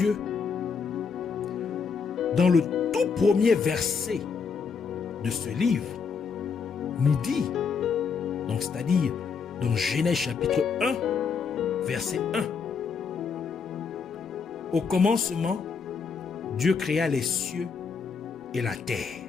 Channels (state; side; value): quieter; right; 5.7 dB